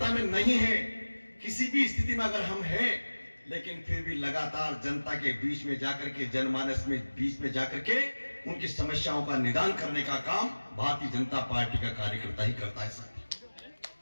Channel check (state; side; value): inverted; both; correlation -1.00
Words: में नहीं है, किसी भी स्थिति में अगर हम हैं, लेकिन फिर भी लगातार जनता के बीच में जाकर के, जनमानस में बीच में जाकर के उनकी समस्याओं का निदान करने का काम भारतीय जनता पार्टी का कार्यकर्ता ही करता है। साथियों,